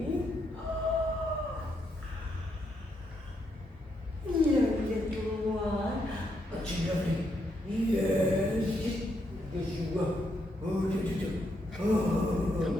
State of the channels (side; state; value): both; normal; correlation 0.78